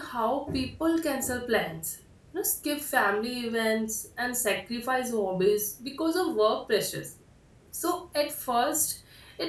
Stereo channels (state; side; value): identical; both; correlation 1.00